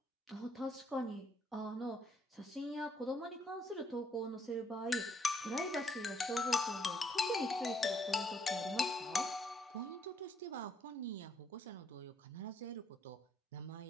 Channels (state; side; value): normal; both; correlation 0.71